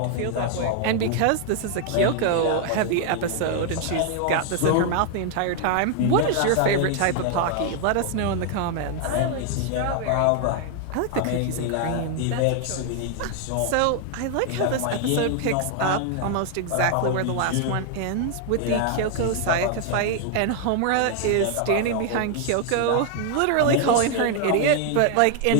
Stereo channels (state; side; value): different; both; correlation 0.00